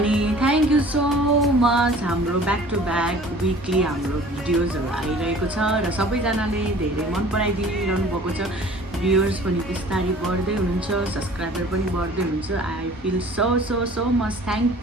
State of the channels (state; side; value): normal; both; correlation 0.48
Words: थ्याङ्क यू सो मच। हाम्रो ब्याक टु ब्याक विकली हाम्रो भिडियोजहरू आइरहेको छ र सबैजनाले धेरै मन पराइदिइरहनु भएको छ। भ्युअर्स पनि बिस्तारै बढ्दै हुनुहुन्छ, सब्सक्राइबर पनि बढ्दै हुनुहुन्छ। I feel so so so much